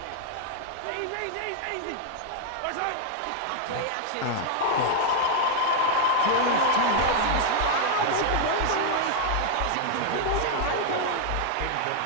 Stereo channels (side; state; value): both; different; correlation 0.00